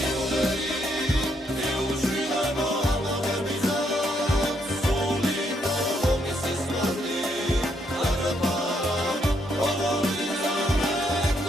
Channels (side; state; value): both; normal; correlation 0.74